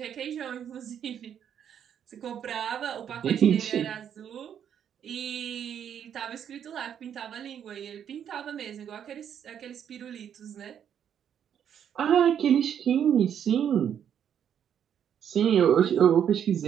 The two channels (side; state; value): left; quieter; 8.9 dB